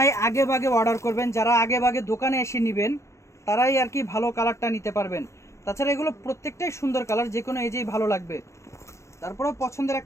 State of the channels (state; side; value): late; right; 0.14 ms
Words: আগে ভাগে অর্ডার করবেন, যারা আগে ভাগে দোকানে এসে নেবেন, তারাই আর কি ভালো কালারটা নিতে পারবেন। তাছাড়া এগুলো প্রত্যেকটাই সুন্দর কালার, যে কোনো এজেই ভালো লাগবে। তারপরেও পছন্দের